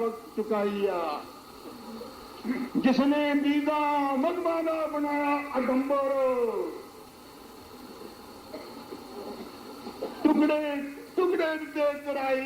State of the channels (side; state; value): both; identical; correlation 1.00